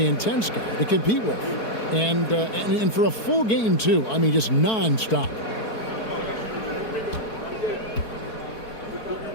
intense guy to compete with. And for a full game, too. I mean, just nonstop.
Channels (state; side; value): late; right; 4.5 ms